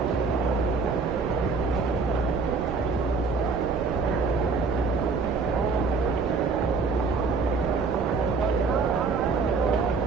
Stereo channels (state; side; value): quieter; left; 4.7 dB